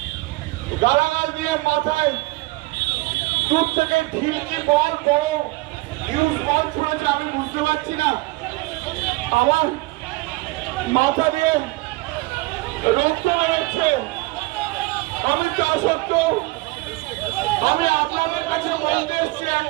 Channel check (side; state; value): left; quieter; 22.5 dB